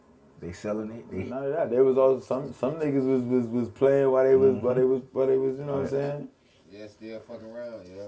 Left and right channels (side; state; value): both; identical; correlation 1.00